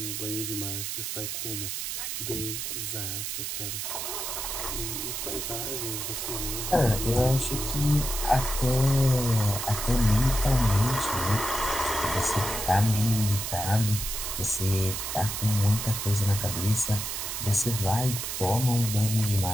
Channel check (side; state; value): right; noise; hiss, 4 dB below the sound